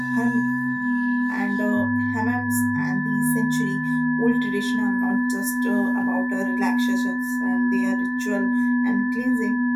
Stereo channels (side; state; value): both; identical; correlation 1.00